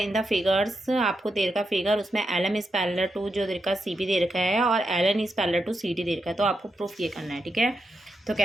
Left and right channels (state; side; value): normal; both; correlation 0.85